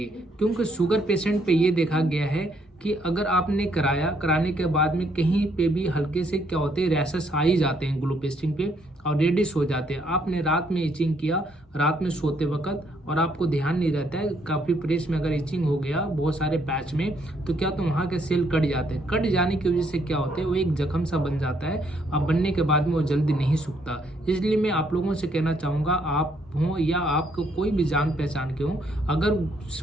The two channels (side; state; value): both; normal; correlation 0.70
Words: क्योंकि शुगर पेशेंट पे ये देखा गया है कि अगर आपने कराने के बाद में कहीं पे भी हल्के से क्या होते हैं, रैशेस आ ही जाते हैं ग्लू पेस्टिंग पे और रेडिश हो जाते हैं। आपने रात में इचिंग किया, रात में सोते वक्त, और आपको ध्यान नहीं रहता है, काफ़ी प्रेस में अगर इचिंग हो गया बहुत सारे पैच में, तो क्या तो वहाँ के सेल कट जाते हैं। कट जाने की वजह से क्या होता है, वो एक जख्म सा बन जाता है, अब बनने के बाद में वो जल्दी नहीं सूखता। इसलिए मैं आप लोगों से कहना चाहूँगा, आप हों या आपको कोई भी जान पहचान के हों, अगर